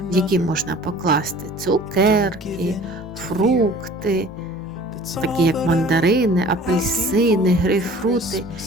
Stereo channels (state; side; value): normal; both; correlation 0.47